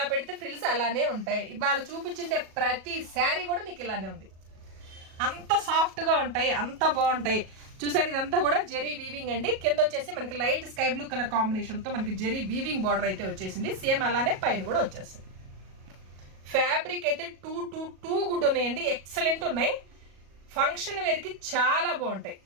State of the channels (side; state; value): left; late; 37 ms